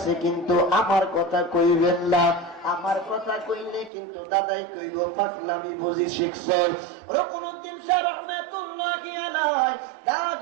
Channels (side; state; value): left; drops out; at 3.9 s